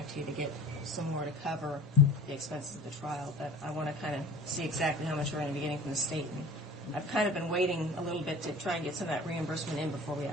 to you to get some more to cover the expenses of the trial. But I want to kind of see exactly how much we're going to be getting from the state. And I've kind of been waiting a little bit to try and get some of that reimbursement in before we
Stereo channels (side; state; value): both; normal; correlation 0.41